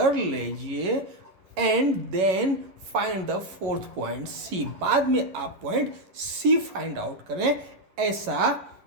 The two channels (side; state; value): left; late; 11 ms